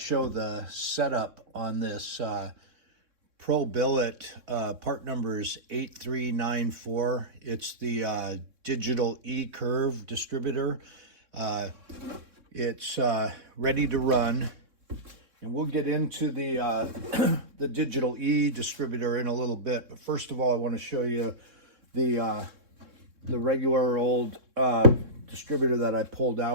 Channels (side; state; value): left; late; 3.6 ms